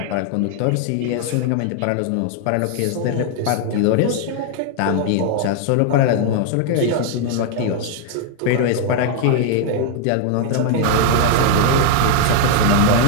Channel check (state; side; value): different; both; correlation 0.00